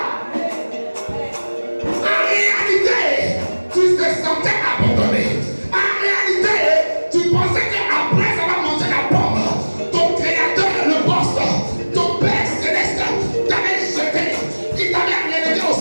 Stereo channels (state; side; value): inverted; both; correlation -1.00